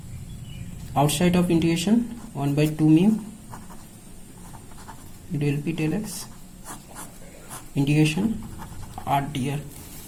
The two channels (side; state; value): both; identical; correlation 1.00